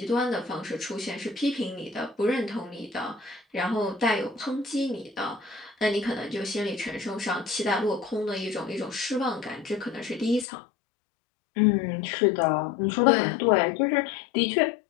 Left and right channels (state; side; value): drops out; right; at 10.5 s